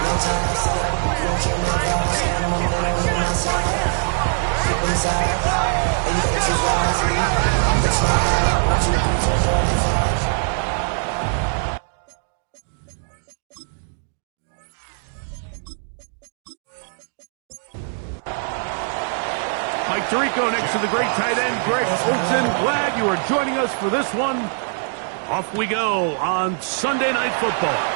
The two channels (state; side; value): silent; left; 61 dB below the other